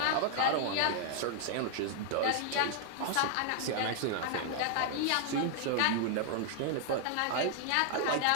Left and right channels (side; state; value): both; different; correlation 0.00